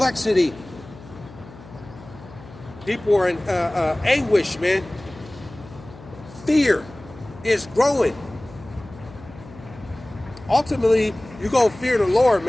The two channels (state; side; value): noise; left; hum, 19 dB below the sound